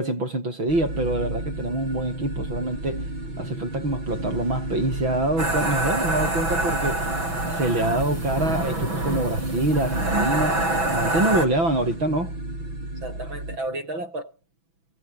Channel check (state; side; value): late; left; 6.1 ms